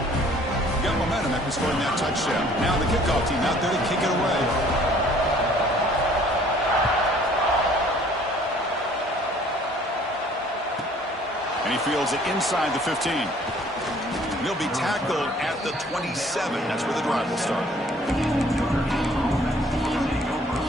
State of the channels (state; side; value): normal; both; correlation 0.56